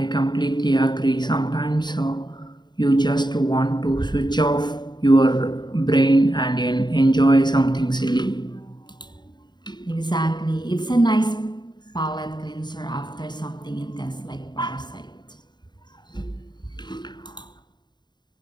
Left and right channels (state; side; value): late; right; 0.21 ms